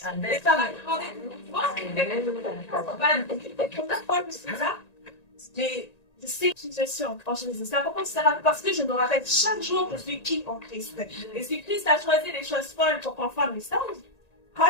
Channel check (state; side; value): late; right; 1.9 ms